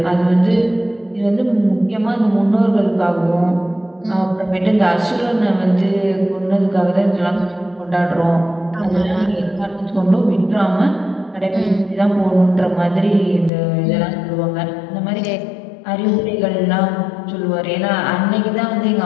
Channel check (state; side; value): drops out; right; at 13.5 s